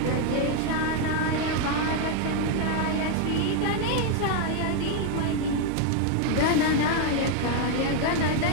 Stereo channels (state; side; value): different; both; correlation 0.00